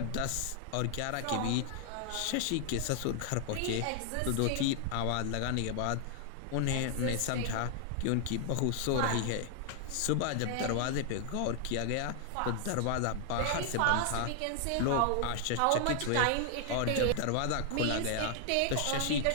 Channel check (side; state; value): both; different; correlation 0.00